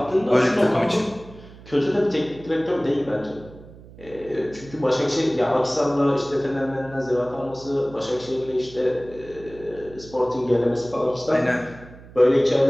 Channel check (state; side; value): noise; right; hum, 19 dB below the sound